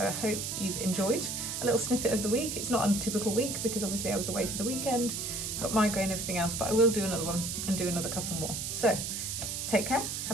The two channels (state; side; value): noise; right; hiss, 3 dB below the sound